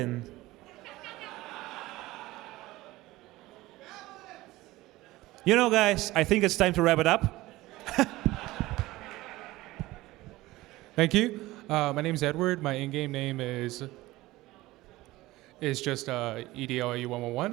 You know, guys, I think it's time to wrap it up. Thank you. My name is Edward. My in-game name is just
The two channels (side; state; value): left; quieter; 18.3 dB